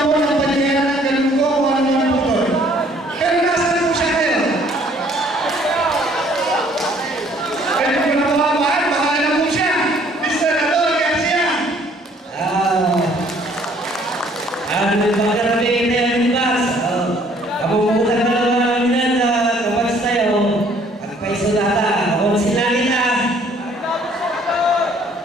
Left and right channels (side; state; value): both; normal; correlation 0.60